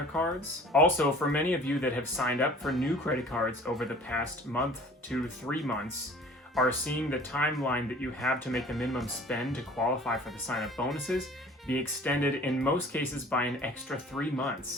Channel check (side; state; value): both; normal; correlation 0.47